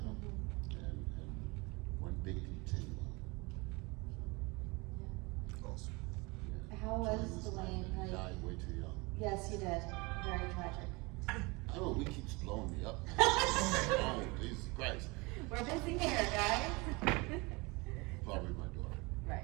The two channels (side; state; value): left; quieter; 26.2 dB